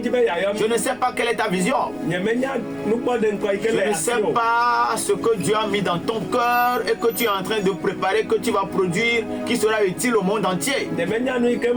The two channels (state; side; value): noise; left; rumble, 24 dB below the sound